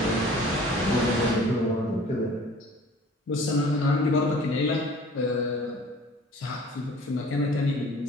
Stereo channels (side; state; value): both; normal; correlation 0.48